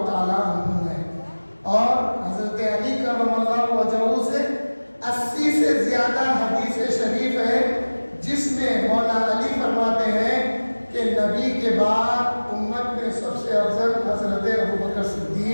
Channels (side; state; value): both; inverted; correlation -1.00